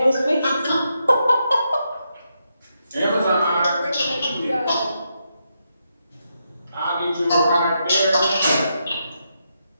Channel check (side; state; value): both; inverted; correlation -0.82